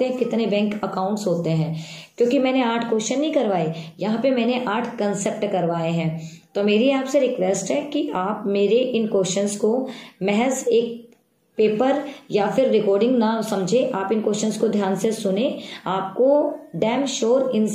हैं, कितने बैंक अकाउंट्स होते हैं। क्योंकि मैंने 8 क्वेश्चन नहीं करवाए, यहाँ पे मैंने 8 कंसेप्ट करवाए हैं। तो मेरी आपसे रिक्वेस्ट है कि आप मेरे इन क्वेश्चंस को महज एक पेपर या फिर रिकॉर्डिंग ना समझे, आप इन क्वेश्चंस को ध्यान से सुने, आपको डैम श्योर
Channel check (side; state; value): both; identical; correlation 1.00